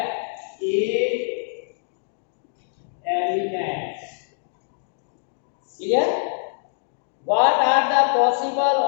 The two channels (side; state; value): right; silent; digital silence